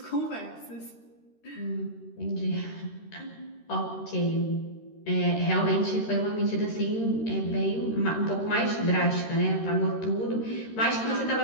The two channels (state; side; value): late; right; 13 ms